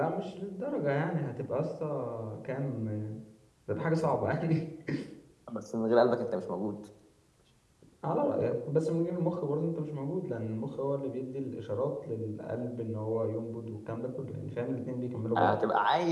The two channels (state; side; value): identical; both; correlation 1.00